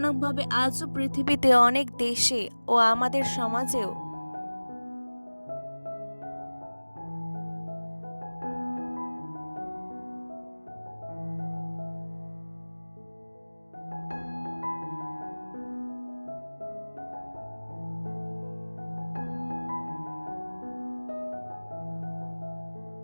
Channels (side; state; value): both; inverted; correlation -1.00